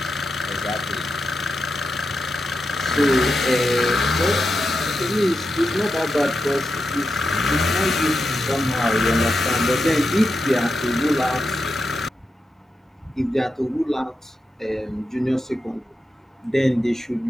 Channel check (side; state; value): both; normal; correlation 0.88